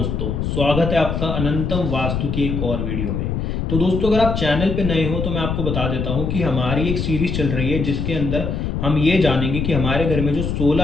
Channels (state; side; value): noise; left; rumble, 2 dB below the sound